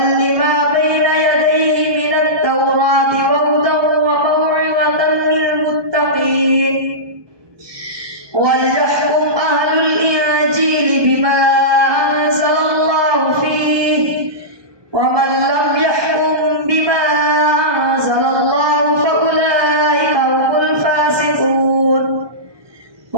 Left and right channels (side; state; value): left; late; 1.2 ms